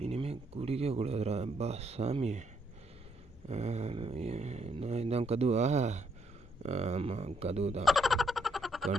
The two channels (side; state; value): both; normal; correlation 0.73